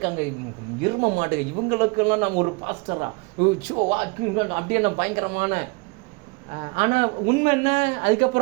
இரும மாட்டுங்க, இவங்களுக்கெல்லாம் நம்ம ஒரு பாஸ்டரா அப்படியே நம்ம பயங்கரமான. ஆனால் உண்மை என்ன,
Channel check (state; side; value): quieter; left; 28.3 dB